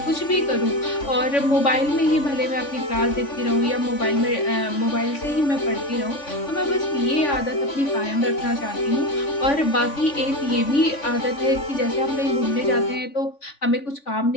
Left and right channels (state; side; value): late; right; 3.5 ms